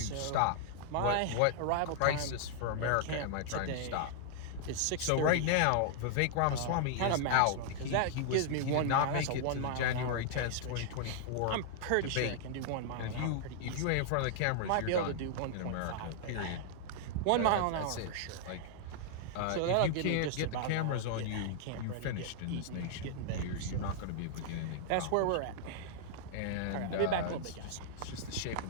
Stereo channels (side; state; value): both; different; correlation -0.01